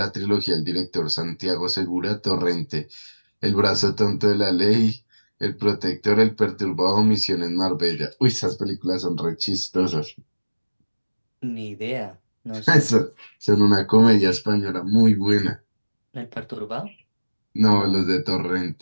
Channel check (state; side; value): inverted; both; correlation -1.00